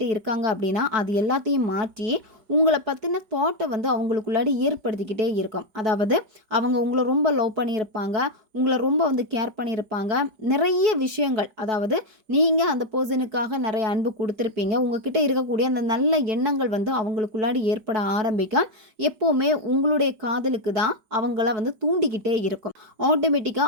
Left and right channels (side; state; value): left; late; 4.6 ms